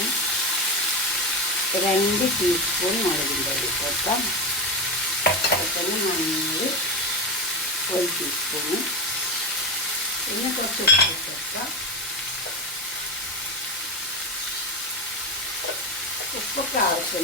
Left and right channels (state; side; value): normal; both; correlation 0.16